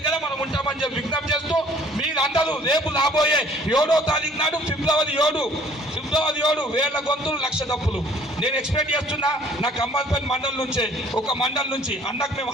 మనం ఉంటామని చెప్పి విజ్ఞప్తి చేస్తూ, మీరందరూ రేపు రాబోయే 7వ తారీఖు నాడు ఫిబ్రవరి 7 వేల గొంతులు 1,00,000 తప్పులు నేను ఎక్స్పెక్ట్ చేస్తున్నా. నా ఖమ్మంపల్లి మండలం నుంచే, ఒక మండలం నుంచి అన్నకు మేము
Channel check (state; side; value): normal; both; correlation 0.56